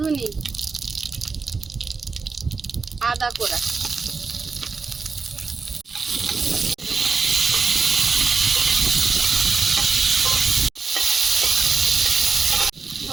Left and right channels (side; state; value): left; quieter; 4.6 dB